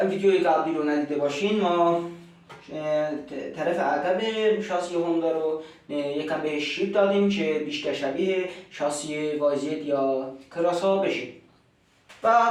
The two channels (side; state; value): both; identical; correlation 1.00